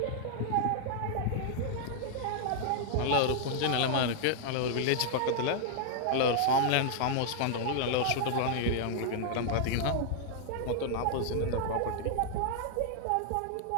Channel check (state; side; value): different; both; correlation -0.01